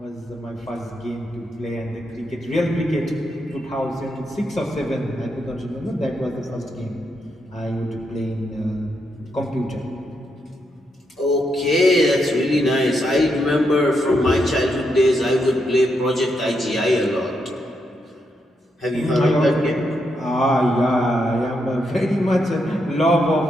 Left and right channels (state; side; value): normal; both; correlation 0.81